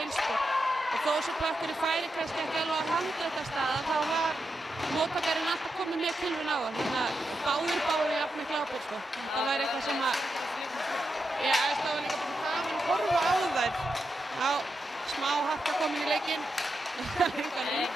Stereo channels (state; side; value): normal; both; correlation 0.86